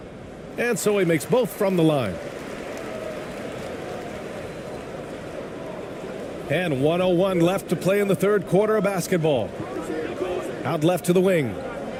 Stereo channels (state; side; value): identical; both; correlation 1.00